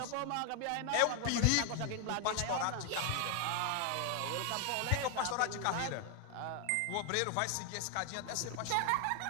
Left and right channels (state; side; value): different; both; correlation 0.00